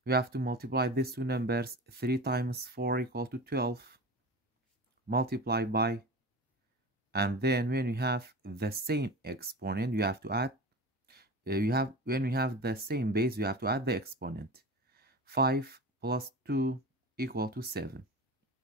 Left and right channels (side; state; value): both; normal; correlation 0.31